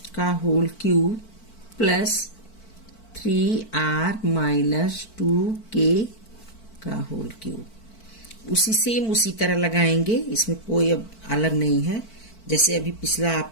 का whole cube plus 3r minus 2k का होल क्यूब। उसी तरह लगाएंगे, इसमें कोई अब अलग नहीं है, जैसे अभी पिछला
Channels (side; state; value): right; late; 4.5 ms